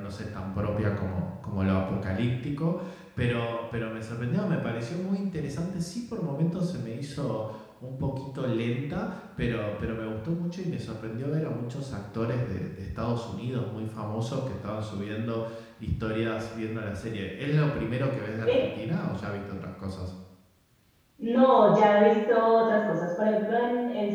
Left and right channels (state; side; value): identical; both; correlation 1.00